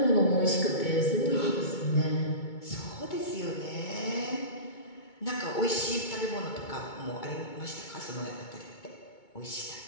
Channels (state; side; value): late; right; 2.2 ms